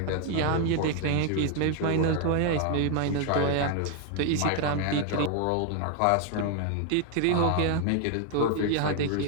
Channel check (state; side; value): different; both; correlation 0.00